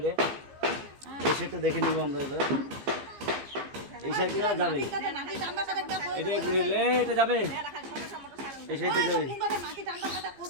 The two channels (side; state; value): left; late; 15 ms